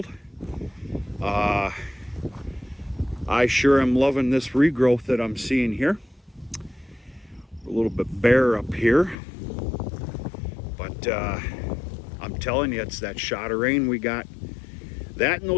I sure am loving this regrowth that I'm seeing here. A little bit bare up here, but I'm telling you, it's that shot of rain we got. That and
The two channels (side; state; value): right; drops out; at 9.2 s